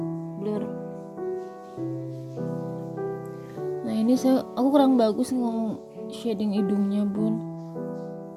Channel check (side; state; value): both; identical; correlation 1.00